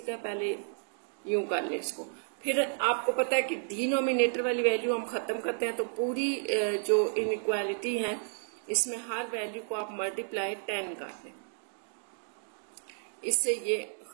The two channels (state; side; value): silent; left; digital silence